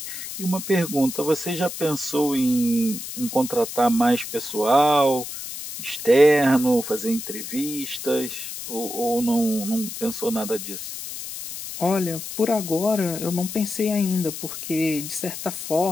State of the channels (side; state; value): left; noise; hiss, 8 dB below the sound